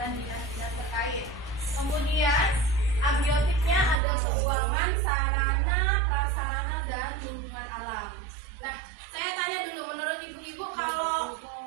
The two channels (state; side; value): drops out; left; at 4.0 s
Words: dinas-dinas terkait. Kemudian abiotiknya ada keuangan, sarana, prasarana, dan lingkungan alam. Nah, saya tanya dulu, menurut ibu-ibu, kalau